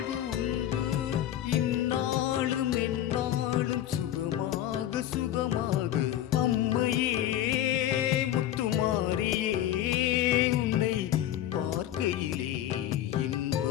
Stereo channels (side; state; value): right; quieter; 12.2 dB